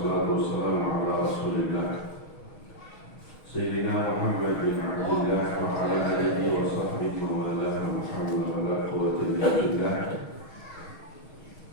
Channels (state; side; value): late; right; 6.3 ms